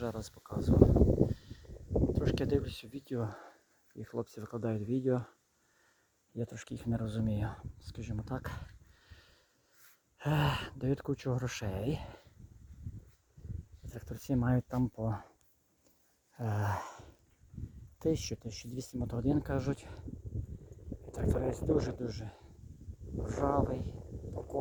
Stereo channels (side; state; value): both; identical; correlation 1.00